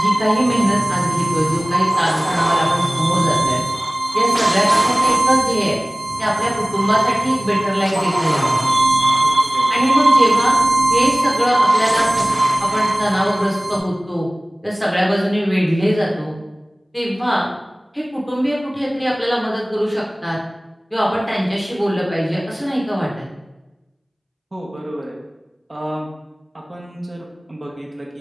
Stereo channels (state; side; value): normal; both; correlation 0.98